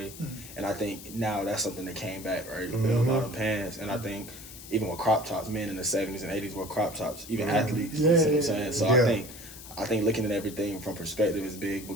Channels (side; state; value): left; noise; hiss, 15 dB below the sound